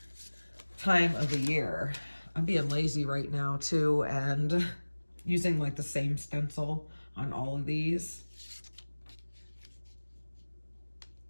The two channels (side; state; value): both; inverted; correlation -1.00